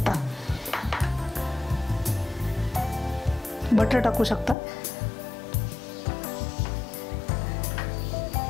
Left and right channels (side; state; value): right; drops out; at 4.5 s